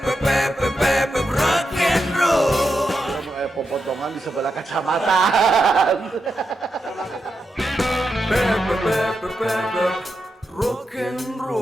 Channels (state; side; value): normal; both; correlation 0.86